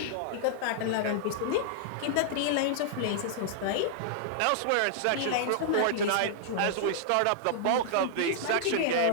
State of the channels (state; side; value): different; both; correlation -0.01